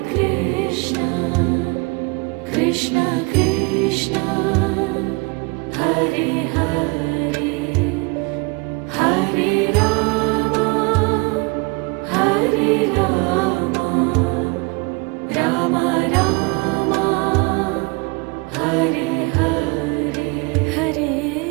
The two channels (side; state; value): left; quieter; 28.1 dB